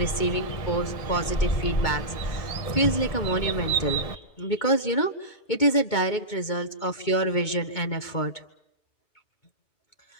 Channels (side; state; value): right; late; 2.2 ms